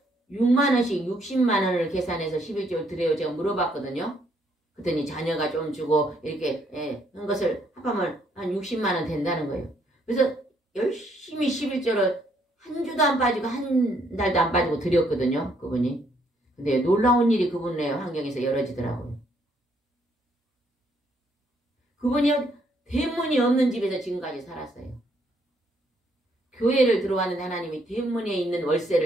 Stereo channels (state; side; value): normal; both; correlation 0.70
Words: 6만 원씩 60만 원을 계산해서 11조를 드려요? 제가 물어봤거든요. 그랬더니 자녀가 좀 주고 이렇게 한 것을 합하면 한 60만 원 된다는 거예요. 그래서 열심히 11조를 한 주도 안 빠지고 한 달도 안 빠지고 드렸거든요. 그분이. 근데 놀라운 일이 그분의 환경에서 열어지더라고요. 그분이 대문이 없는 집에서 지금까지 살았어요. 교회를 들어왔는데 하나님이 대문에 있는